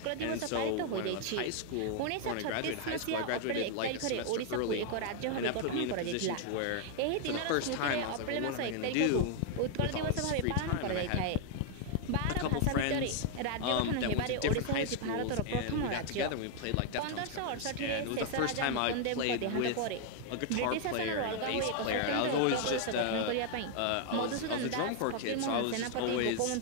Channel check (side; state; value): both; different; correlation 0.00